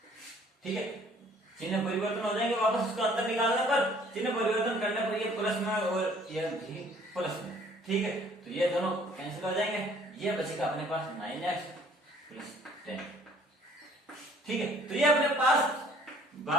ठीक है। चिन्ह परिवर्तन हो जाएंगे, वापस उसको अंदर निकालने पर चिन्ह परिवर्तन करने पर ये प्लस में और ये भी प्लस में, ठीक है। तो ये दोनों कैंसिल हो जाएंगे, ये बचेगा अपने पास 9x प्लस 10, ठीक है। तो ये अपने पास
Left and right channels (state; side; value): normal; both; correlation 0.57